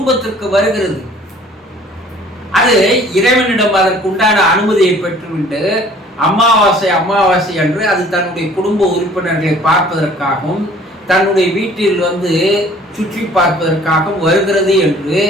வருகிறது. அது இறைவனிடம் அதற்கு உண்டான அனுமதியை பெற்றுவிட்டு அமாவாசை அன்று அது தன்னுடைய குடும்ப உறுப்பினர்களை பார்ப்பதற்காகவும் தன்னுடைய வீட்டில் சுற்றி பார்ப்பதற்காகவும் வருகிறது என்று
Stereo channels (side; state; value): both; normal; correlation 0.53